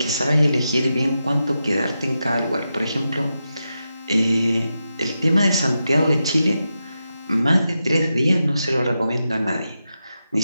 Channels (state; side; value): inverted; both; correlation -0.88